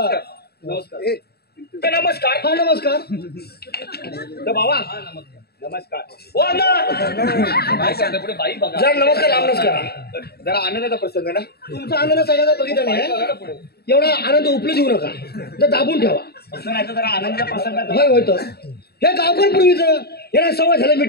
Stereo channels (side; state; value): right; late; 0.46 ms